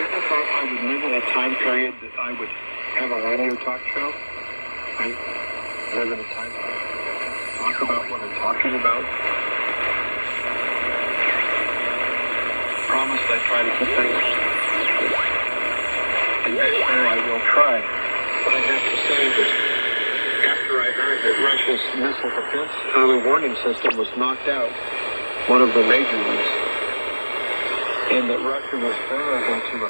thought I would live in a time period that I would have a radio talk show. I live in a time period to talk about what I'm talking about. Promise I try to keep things. And next year I will try. But I have to say that after I heard that Russia's missile defense early warning system was knocked out, one of the major ones, and that Russia was vulnerable to a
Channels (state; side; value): inverted; both; correlation -1.00